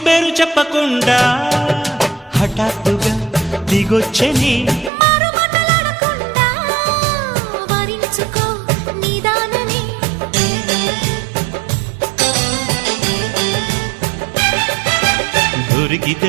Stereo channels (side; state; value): left; drops out; at 4.9 s